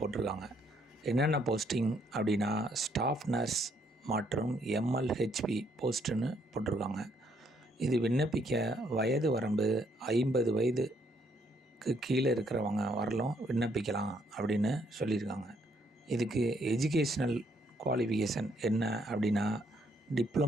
என்னென்ன போஸ்டிங் அப்படின்னா, ஸ்டாஃப் நர்ஸ் மற்றும் எம்எல்ஹெச்பி போஸ்ட்டுன்னு போட்டிருக்காங்க. இது விண்ணப்பிக்க வயது வரம்பு 50 வயதுக்கு கீழே இருக்கிறவங்க வரலும் விண்ணப்பிக்கலாம் அப்படின்னு சொல்லியிருக்காங்க. இதுக்கு எஜுகேஷ்னல் குவாலிஃபிகேஷன் என்ன அப்படின்னா,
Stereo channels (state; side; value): normal; both; correlation 0.70